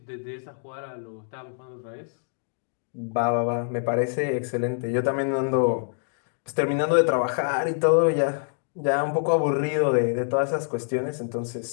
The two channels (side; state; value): right; silent; digital silence